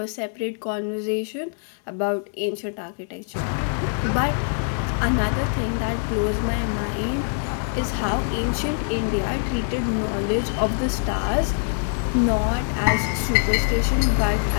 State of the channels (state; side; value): silent; right; digital silence